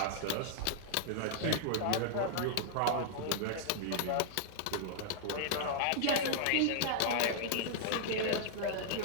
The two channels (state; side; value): different; both; correlation -0.01